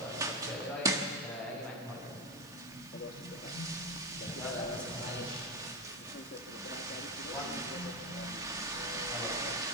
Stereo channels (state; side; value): noise; right; hiss, 20 dB below the sound